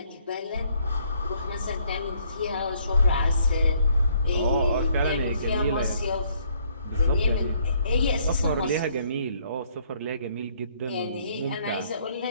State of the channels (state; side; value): inverted; both; correlation -0.66